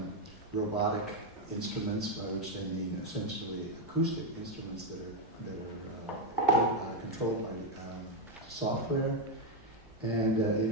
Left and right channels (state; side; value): normal; both; correlation 0.05